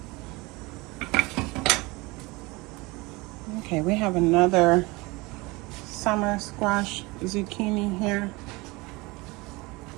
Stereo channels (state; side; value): quieter; left; 23.8 dB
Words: Okay, we have another summer squash zucchini here.